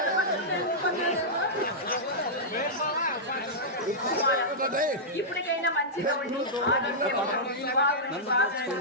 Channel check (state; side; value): normal; both; correlation -0.11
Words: ఇప్పటికైనా మంచిగా ఉండి ఆరోగ్యం